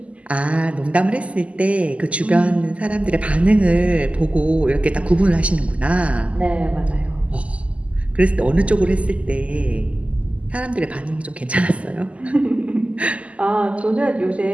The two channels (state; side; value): late; left; 0.064 ms